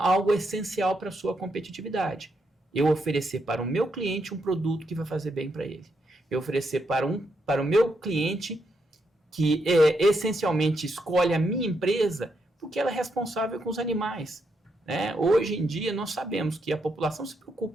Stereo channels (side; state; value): both; normal; correlation 0.80